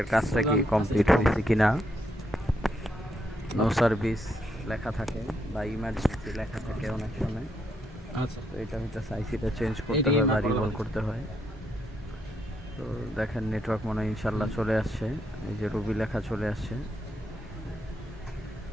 কাজটা কি কমপ্লিট হয়েছে কিনা। নো সার্ভিস লেখা থাকে বা ইমার্জেন্সি লেখা থাকে অনেক সময়। আচ্ছা, তো এটা হচ্ছে আইসিটা চেঞ্জ করতে হয় বা রিভলভ করতে হয়। তো দেখেন নেটওয়ার্ক মনে হয় ইনশাল্লাহ চলে আসছে, এই যে রবি লেখা চলে আসছে।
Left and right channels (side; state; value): both; normal; correlation 0.77